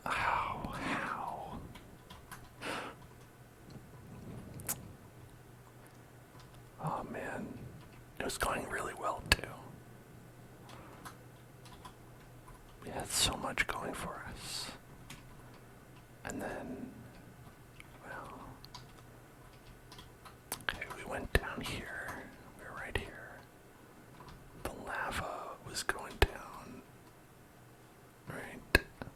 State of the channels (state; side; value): identical; both; correlation 1.00